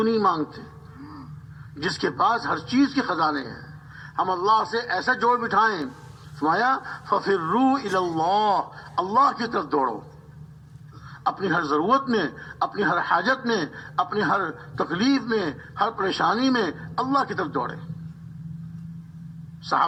نہیں مانگتے؟ جس کے پاس ہر چیز کے خزانے ہیں. ہم اللہ سے ایسا جوڑ بٹھائیں. فرمایا ففروا الی اللہ، اللہ کی طرف دوڑو. اپنی ہر ضرورت میں، اپنی ہر حاجت میں، اپنی ہر تکلیف میں، ہر پریشانی میں اللہ کی طرف دوڑے.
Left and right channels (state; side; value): identical; both; correlation 1.00